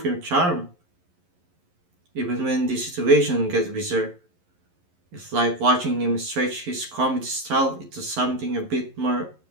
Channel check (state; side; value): late; left; 11 ms